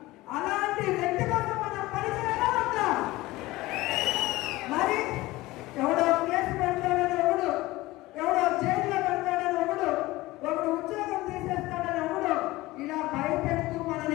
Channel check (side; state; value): right; quieter; 19.0 dB